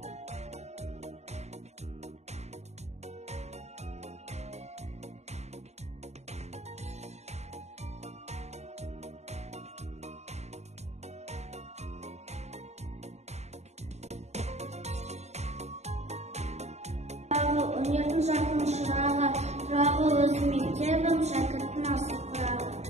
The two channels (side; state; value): left; late; 0.32 ms